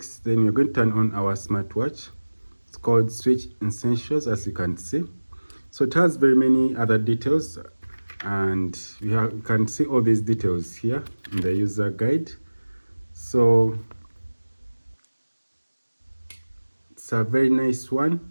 Then you're going to turn on our smartwatch. It's called Switch Essentials, as you can see. So it has very many other details, and you can see all these details here in the user guide. So it's a very nice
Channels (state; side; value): inverted; both; correlation -1.00